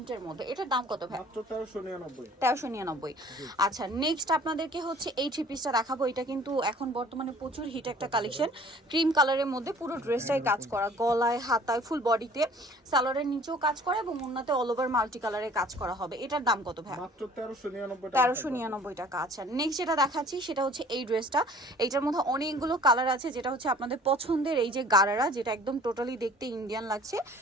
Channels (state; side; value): normal; both; correlation 0.51